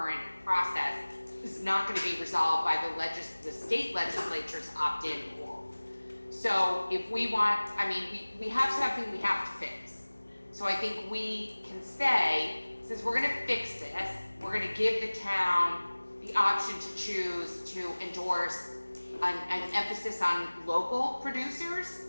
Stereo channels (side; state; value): both; inverted; correlation -1.00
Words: process, is not going to be resolved by the state legislature's opt-in rule. So if we want, we have something we have to fix. So I think we can say, since we're gonna fix this, we're gonna give the town the option to choose to endorse an emphasis on local producers